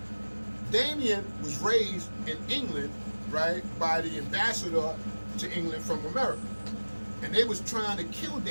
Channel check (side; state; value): both; inverted; correlation -1.00